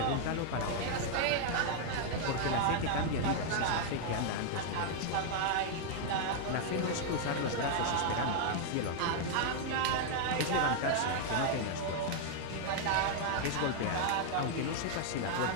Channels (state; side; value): different; both; correlation 0.00